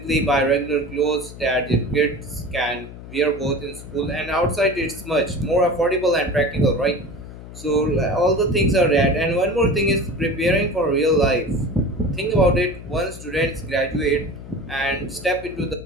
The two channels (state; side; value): noise; left; hum, 14 dB below the sound